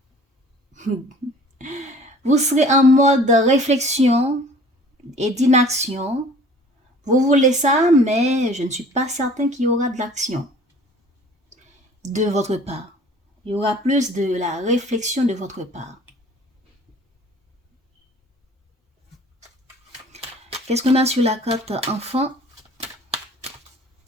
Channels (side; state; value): both; normal; correlation 0.49